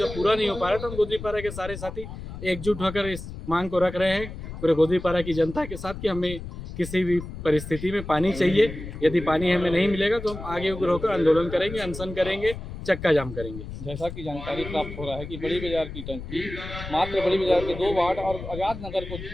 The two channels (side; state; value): left; noise; rumble, 10 dB below the sound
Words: पूरा नहीं हो पा रहा, तो हम गोदरीपारा के सारे साथी एकजुट होकर इस मांग को रख रहे हैं पूरे गोदरीपारा की जनता के साथ कि हमें किसी भी परिस्थिति में पानी चाहिए। यदि पानी हमें नहीं मिलेगा तो हम आगे उग्र होकर आंदोलन करेंगे, अनशन करेंगे, चक्का जाम करेंगे। जैसा कि जानकारी प्राप्त हो रहा है कि बड़ी बाजार की टंकी मात्र बड़ी बाजार के 2 वार्ड और आज़ाद नगर को